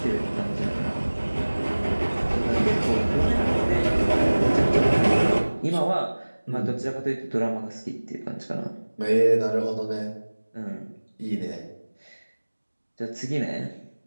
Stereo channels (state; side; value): inverted; both; correlation -1.00